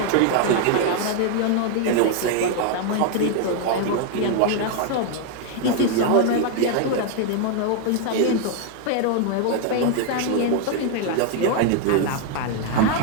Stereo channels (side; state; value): both; different; correlation 0.00